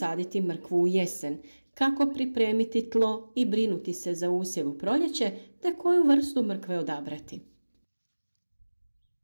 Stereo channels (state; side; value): inverted; both; correlation -1.00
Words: mrkvu u jesen, kako pripremiti tlo i brinuti se za usjev u proljeće, te koju vrstu mrkve odabrati.